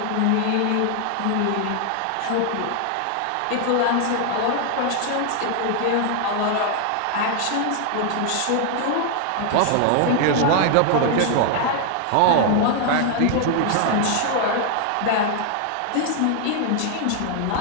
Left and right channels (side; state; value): both; different; correlation 0.00